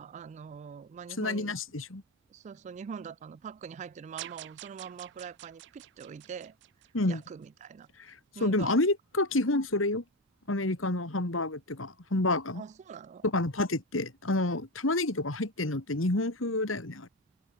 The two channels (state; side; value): normal; both; correlation 0.16